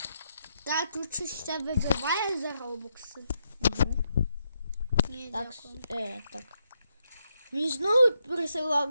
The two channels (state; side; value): inverted; both; correlation -0.80